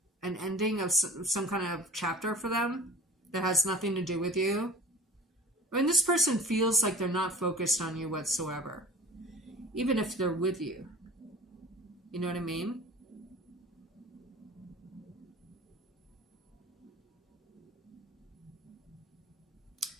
an ending of some kind of chapter for them that has nothing to do with you. I mean, this person feels like they're not focused on you whatsoever, even if they're with you. You know what I mean?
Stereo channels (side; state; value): both; normal; correlation 0.41